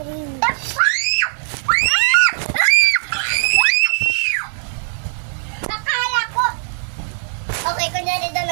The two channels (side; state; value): left; silent; digital silence